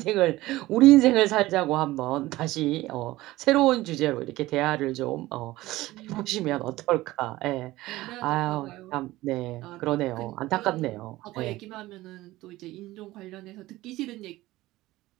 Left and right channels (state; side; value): quieter; left; 17.7 dB